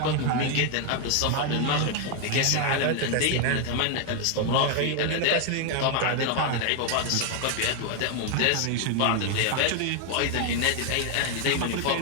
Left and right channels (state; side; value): different; both; correlation 0.00